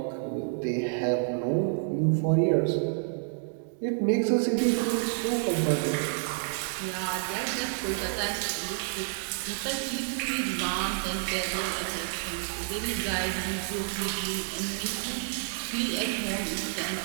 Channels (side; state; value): left; silent; digital silence